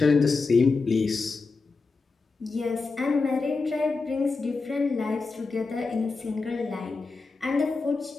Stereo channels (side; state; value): right; quieter; 4.1 dB